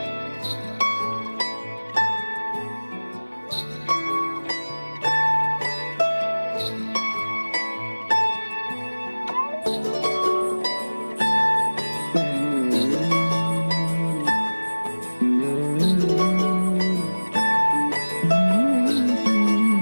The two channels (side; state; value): both; inverted; correlation -1.00